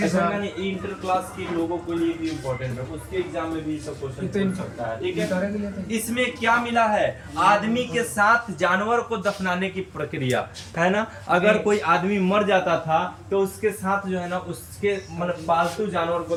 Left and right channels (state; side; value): identical; both; correlation 1.00